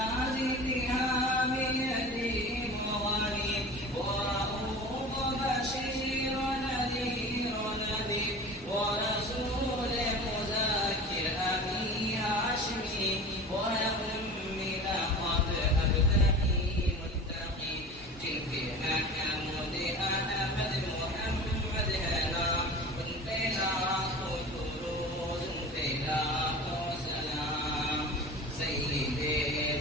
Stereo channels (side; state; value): both; normal; correlation 0.36